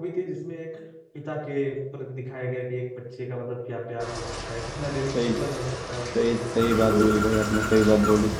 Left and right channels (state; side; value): identical; both; correlation 1.00